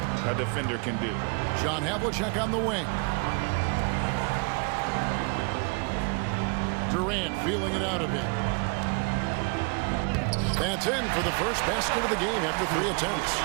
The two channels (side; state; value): left; quieter; 33.5 dB